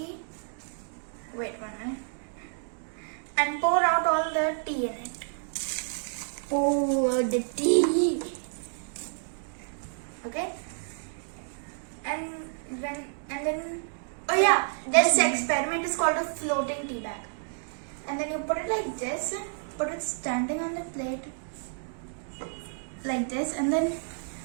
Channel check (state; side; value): silent; left; digital silence